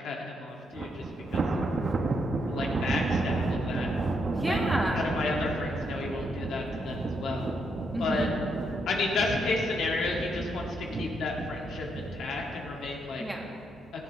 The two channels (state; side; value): normal; both; correlation 0.78